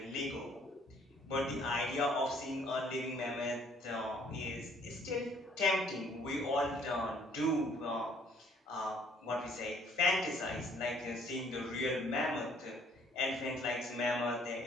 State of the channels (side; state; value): both; normal; correlation 0.61